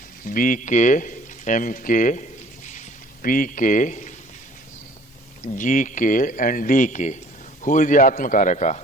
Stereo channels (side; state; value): both; normal; correlation 0.54